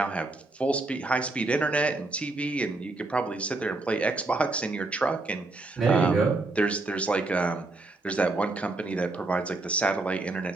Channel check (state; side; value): quieter; left; 3.2 dB